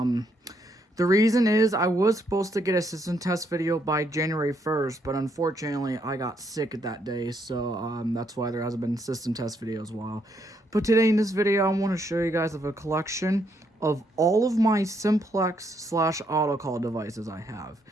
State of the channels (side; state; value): both; normal; correlation 0.74